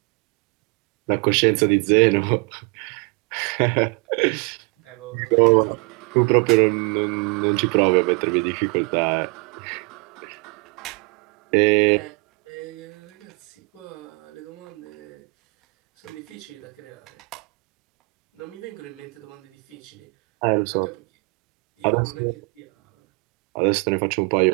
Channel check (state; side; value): quieter; left; 32.3 dB